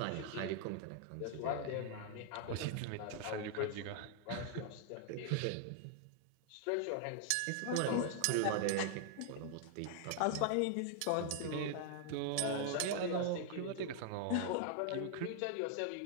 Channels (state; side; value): different; both; correlation 0.00